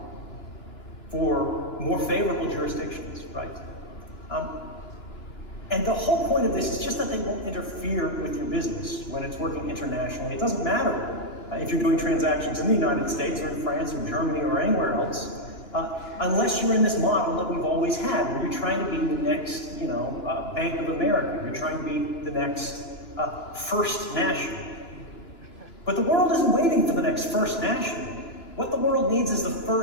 for more favorable jurisdictions, right? And the whole point of this is just that they won't interfere with your business when it's working internationally. It doesn't matter if you're doing transactions in the United States or in France or Germany or anywhere else, unless you're in this model that we've always had, where you're trying to be the next, Bank of America, you're trying to be the next First National. But the world isn't waiting for the next First National. What the world needs is the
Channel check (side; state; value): right; late; 2.9 ms